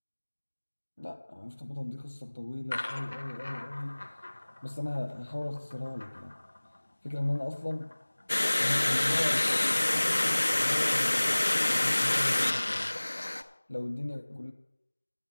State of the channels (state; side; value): inverted; both; correlation -1.00